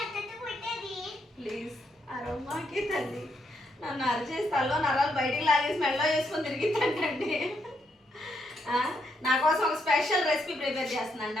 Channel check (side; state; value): both; normal; correlation 0.78